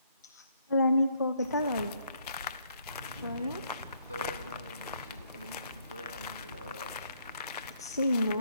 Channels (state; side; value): inverted; both; correlation -0.70